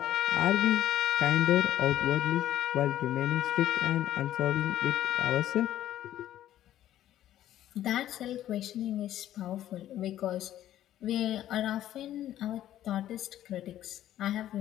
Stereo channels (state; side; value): quieter; right; 12.5 dB